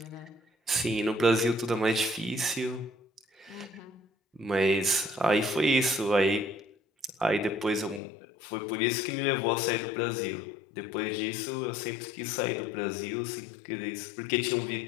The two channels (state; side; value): drops out; right; at 8.0 s